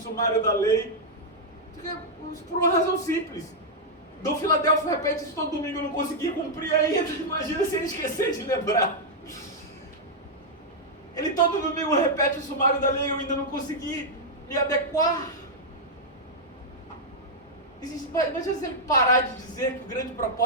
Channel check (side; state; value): both; normal; correlation -0.04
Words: da lei? Por uma razão simples. Dom Filadélfio repete isso todo domingo, eu não conseguia cumprir ainda. Imagina se ele esquecer de lembrar. Ele todo domingo repete o sumário da lei, eu ainda não consegui me adequar. Imagina se ele parar de dizer que o grande